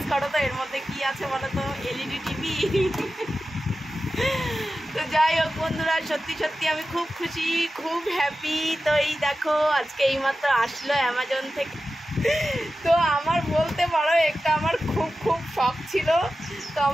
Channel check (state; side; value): normal; both; correlation 0.93